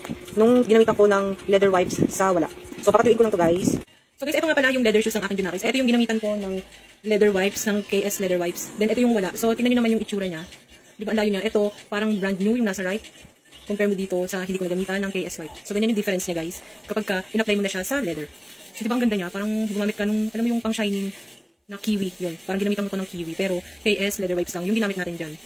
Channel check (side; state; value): both; identical; correlation 1.00